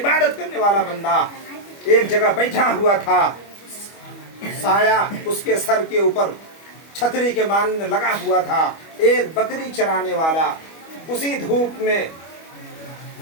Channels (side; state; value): right; late; 25 ms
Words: करने वाला बंदा एक जगह बैठा हुआ था, साया उसके सर के ऊपर छतरी के मानिंद लगा हुआ था। एक बकरी चराने वाला उसी धूप में